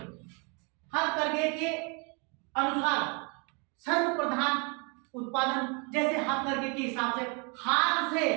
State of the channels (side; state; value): left; quieter; 33.7 dB